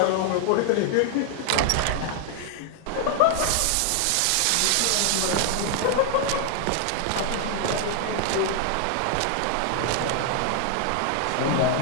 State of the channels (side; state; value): both; different; correlation 0.00